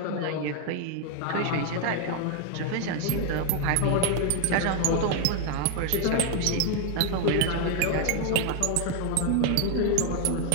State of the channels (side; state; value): both; different; correlation 0.01